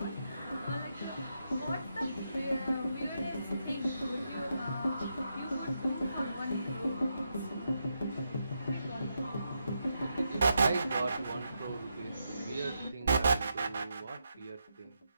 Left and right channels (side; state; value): both; inverted; correlation -0.83